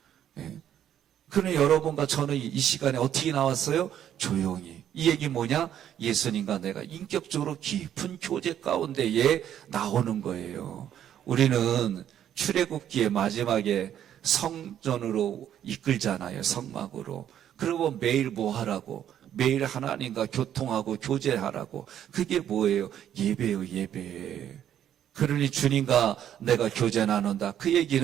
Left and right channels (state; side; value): quieter; left; 10.3 dB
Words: 예. 그러나 여러분과 저는 이 시간에 어떻게 나왔어요? 조용히. 이 얘기 뭐냐? 예수님과 내가 인격적으로 깊은 교제 가운데에 나오는 거예요. 우리는 출애굽기의 마지막에 성전으로 이끌잖아요. 성막으로. 그리고 매일 뭐 하라고? 매일 하나님과 교통하고 교제하라고. 그게 뭐예요? 예배예요, 예배. 그러니 주님과 내가 교제 나눈다. 그